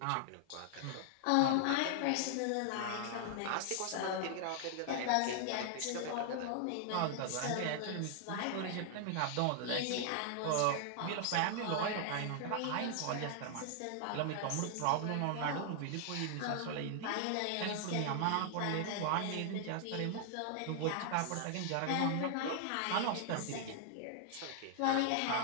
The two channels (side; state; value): both; different; correlation 0.00